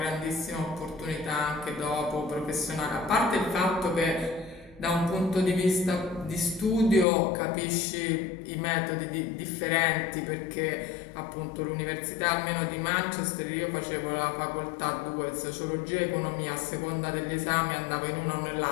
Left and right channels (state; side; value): drops out; right; at 7.1 s